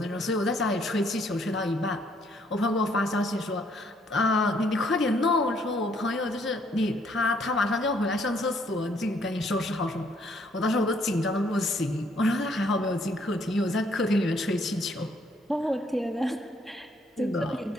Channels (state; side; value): normal; both; correlation 0.67